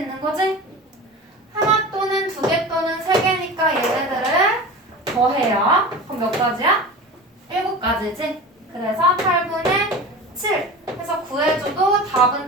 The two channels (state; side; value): normal; both; correlation 0.32